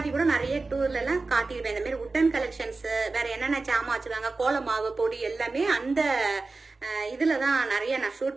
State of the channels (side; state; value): left; quieter; 3.7 dB